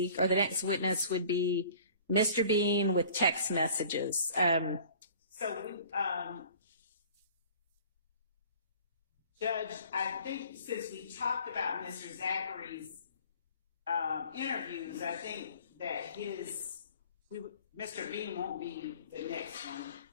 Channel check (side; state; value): both; inverted; correlation -0.48